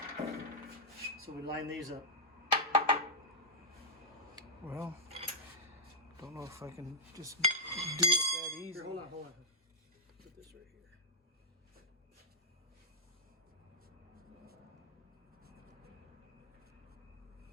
So we line these up. Well, don't know if I can just do it that easy. Here, hold on, hold on. Put this right here.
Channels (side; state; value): both; normal; correlation -0.04